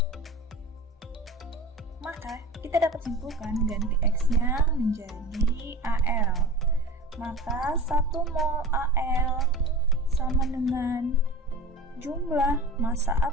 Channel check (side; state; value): both; normal; correlation 0.34